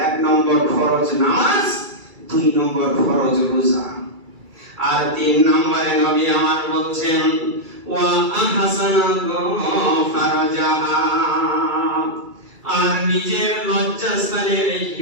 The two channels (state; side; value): late; left; 2.3 ms